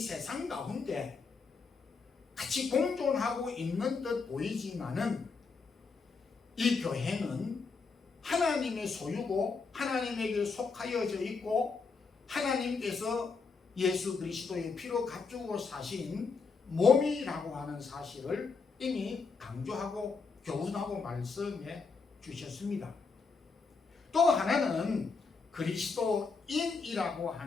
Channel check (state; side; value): quieter; right; 4.8 dB